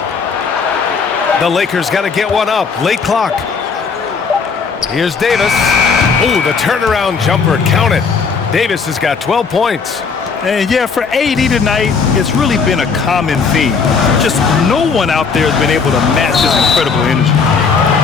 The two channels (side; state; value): right; quieter; 5.4 dB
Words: The Lakers got to get one up. Late clock. Here's Davis. Ooh, the turnaround jumper. Count it. Davis has got 12 points. And yeah, for AD tonight, it's really been a common theme. Just no one out there has been able to match his incredible energy.